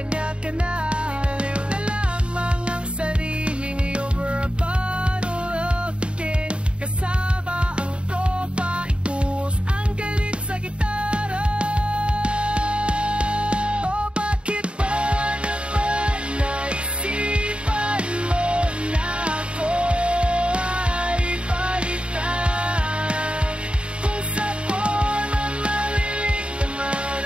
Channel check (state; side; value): late; left; 0.056 ms